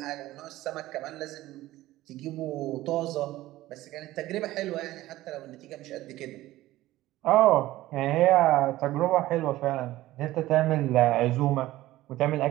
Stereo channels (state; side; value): quieter; left; 16.3 dB